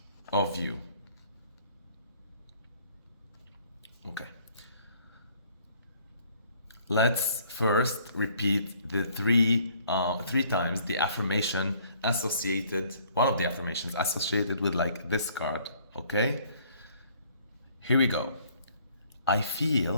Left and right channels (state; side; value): inverted; both; correlation -0.60